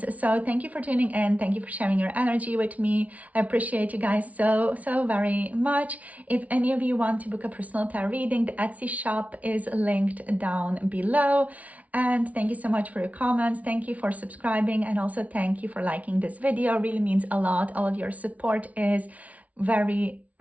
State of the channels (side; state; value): left; late; 0.068 ms